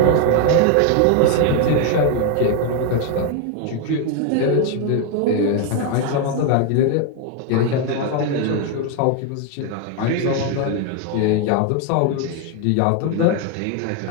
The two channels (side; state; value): both; different; correlation 0.01